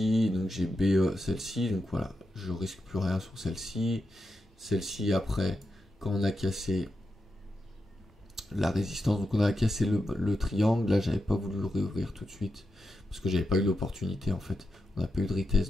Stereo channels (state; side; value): normal; both; correlation 0.88